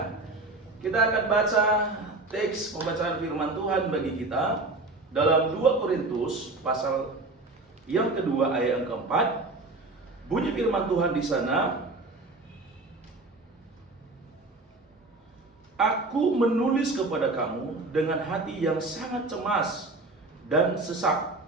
Kita akan baca teks pembacaan firman Tuhan bagi kita dalam 2 Korintus pasal yang kedua ayat yang keempat. Bunyi firman Tuhan di sana, "Aku menulis kepada kamu dengan hati yang sangat cemas dan sesak,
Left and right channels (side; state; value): left; quieter; 3.2 dB